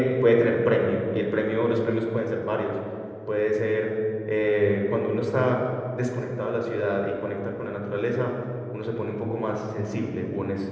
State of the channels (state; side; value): identical; both; correlation 1.00